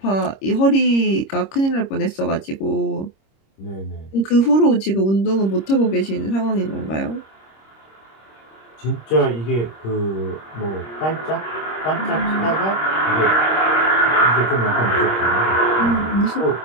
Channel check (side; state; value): right; late; 26 ms